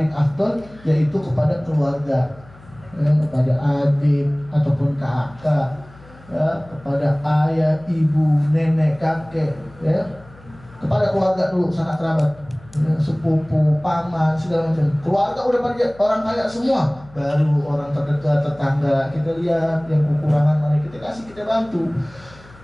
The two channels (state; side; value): noise; left; hum, 23 dB below the sound